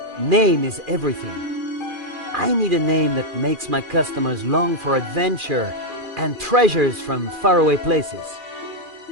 name is everything. I need a name that makes my customers long for adventure and treasures from faraway places.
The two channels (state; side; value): late; left; 2.4 ms